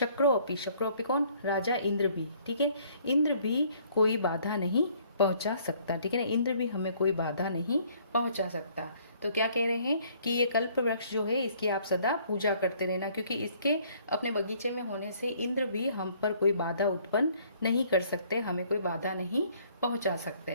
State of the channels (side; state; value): both; inverted; correlation -0.61